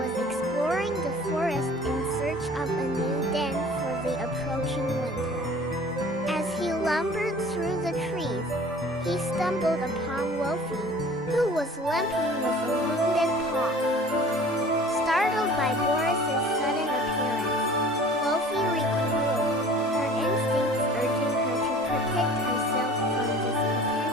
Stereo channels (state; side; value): normal; both; correlation 0.46